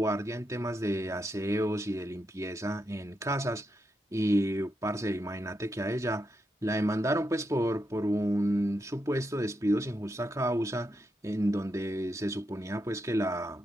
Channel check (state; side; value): normal; both; correlation 0.84